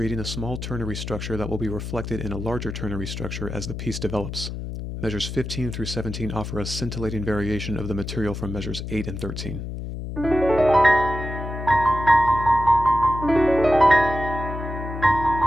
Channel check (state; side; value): noise; left; hum, 7 dB below the sound